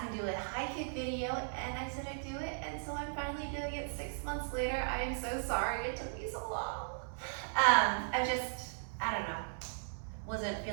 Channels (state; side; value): silent; left; 53 dB below the other